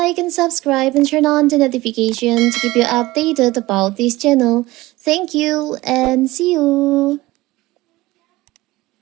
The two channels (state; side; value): quieter; left; 19.0 dB